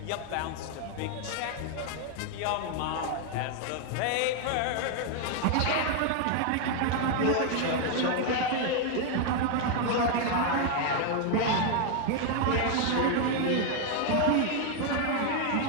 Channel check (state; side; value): different; both; correlation 0.01